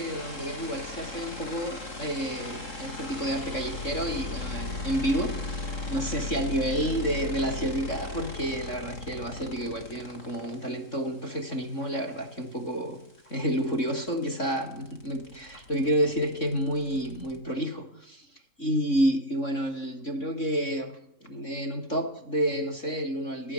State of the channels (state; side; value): late; right; 3.6 ms